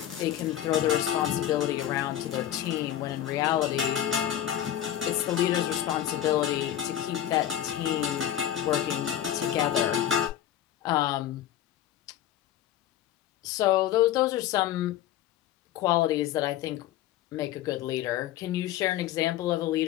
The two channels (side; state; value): right; quieter; 11.7 dB